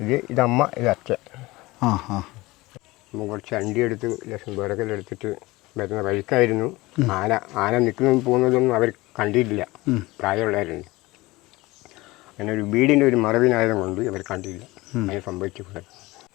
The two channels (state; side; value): quieter; right; 20.7 dB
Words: ഇതമ്മ, ഇത് അച്ഛൻ. കുറച്ച് അണ്ടി എടുത്ത് ലക്ഷം വിറകലെടുത്തിട്ട് വരുന്ന വഴിക്കായിരുന്നു ആന നിൽക്കുന്നതും പോകുന്നതൊന്നും അവർ കണ്ടിട്ടില്ല. പ്രായമുള്ളവരുണ്ട്. അങ്ങനെ ഒരു വീടിൻ്റെ ഒരു മറവിനായതും കൊണ്ട് ഇവർ കണ്ടില്ല. അങ്ങനെ സംഭവിച്ചിട്ടുണ്ട്.